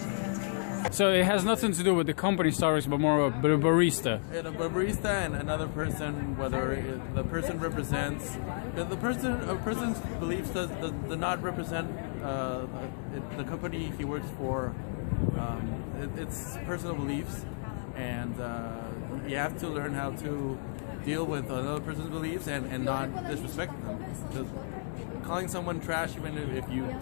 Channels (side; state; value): right; silent; digital silence